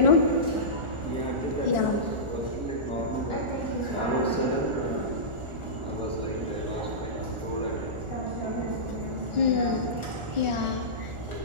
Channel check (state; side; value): late; left; 1.4 ms